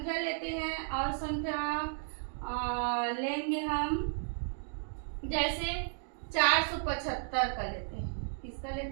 लेते हैं और संख्या लेंगे हम, जैसे 475 का लेते हैं, किसका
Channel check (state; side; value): silent; left; digital silence